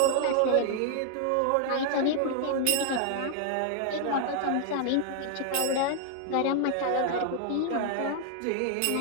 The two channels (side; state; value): both; different; correlation 0.00